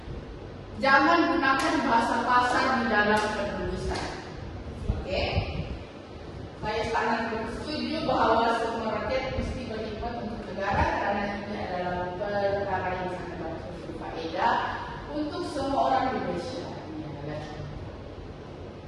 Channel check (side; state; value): both; identical; correlation 1.00